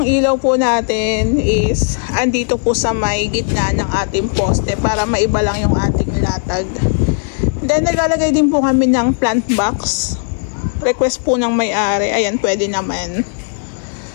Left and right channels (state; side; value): silent; right; 57 dB below the other